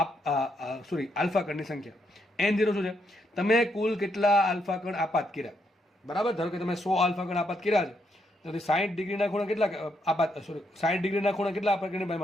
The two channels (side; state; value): both; normal; correlation 0.77